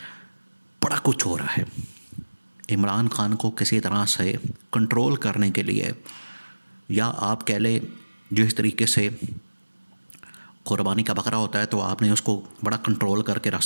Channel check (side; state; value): both; inverted; correlation -1.00